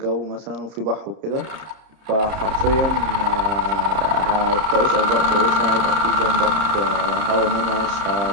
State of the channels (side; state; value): left; late; 30 ms